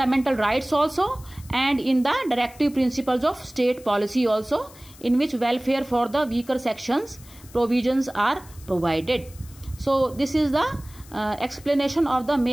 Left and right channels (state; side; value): noise; left; hiss, 22 dB below the sound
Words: rights also, and in the directive principles of state policy also, in which welfare for the weaker sections provisions are provided. So this is the explanation of the